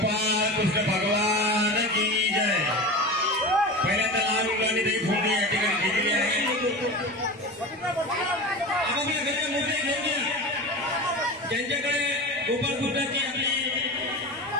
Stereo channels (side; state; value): right; noise; rumble, 28 dB below the sound